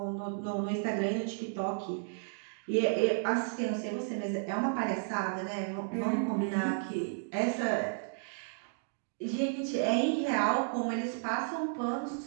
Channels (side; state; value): left; silent; digital silence